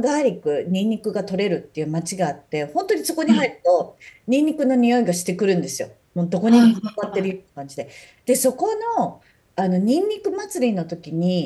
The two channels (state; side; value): identical; both; correlation 1.00